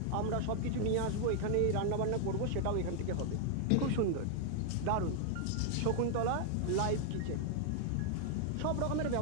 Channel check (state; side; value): different; both; correlation 0.00